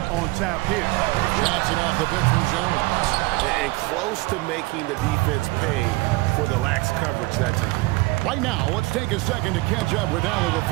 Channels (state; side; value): quieter; left; 22.5 dB